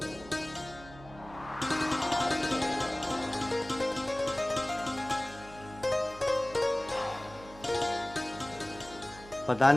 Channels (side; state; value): right; noise; hum, 19 dB below the sound